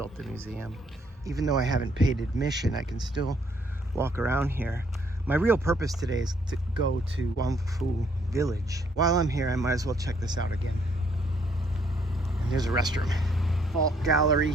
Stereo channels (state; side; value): normal; both; correlation 0.68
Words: the museum. Even though I haven't paid admission, I can still walk around here. My real purpose today is to go to Guangfu Village. While I'm here, I might as well check this out again. And there's a restroom. Fault gallery